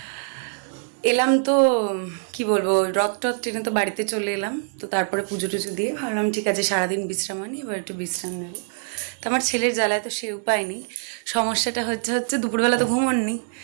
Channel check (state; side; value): silent; left; digital silence